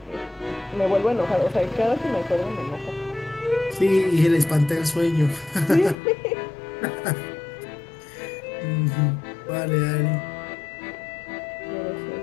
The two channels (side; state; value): right; drops out; at 6.0 s